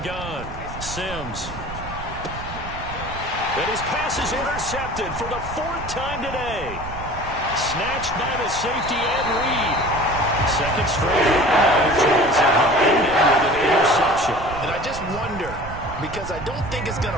Sims. And his pass is intercepted for the 4th time today. Snatched by the safety Ed Reed. Second straight with an interception. And I just wonder, because I don't think it's going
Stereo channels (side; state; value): right; noise; rumble, 11 dB below the sound